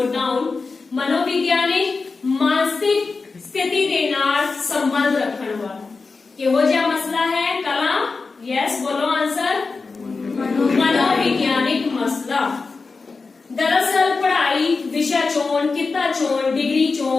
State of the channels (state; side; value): quieter; right; 4.3 dB